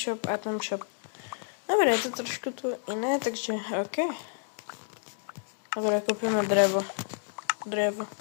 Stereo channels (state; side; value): silent; right; digital silence